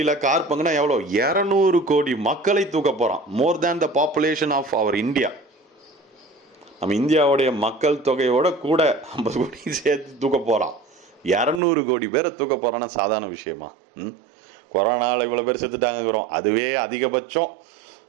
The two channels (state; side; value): drops out; left; at 11.6 s